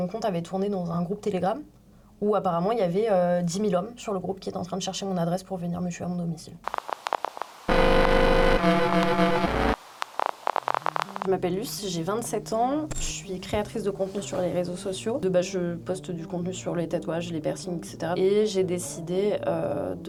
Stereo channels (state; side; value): identical; both; correlation 1.00